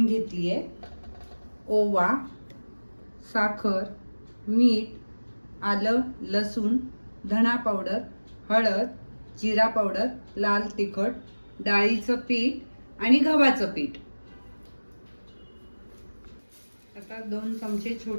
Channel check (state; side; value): inverted; both; correlation -1.00